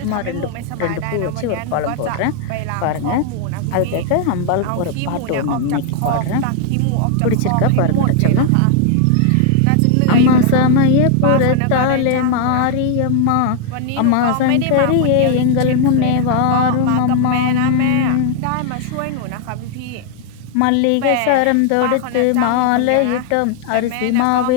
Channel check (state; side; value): different; both; correlation 0.00